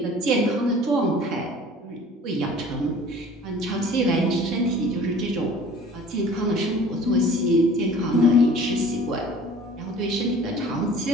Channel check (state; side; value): normal; both; correlation 0.47